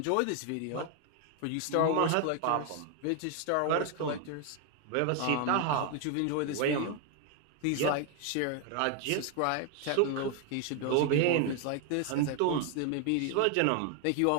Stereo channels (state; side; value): different; both; correlation 0.00